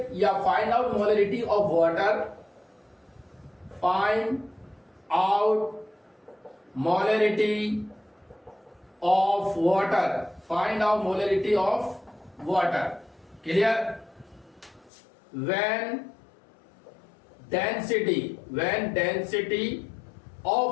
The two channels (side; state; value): right; drops out; at 14.9 s